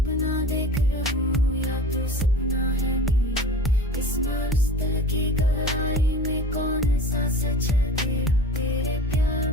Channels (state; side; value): normal; both; correlation 0.36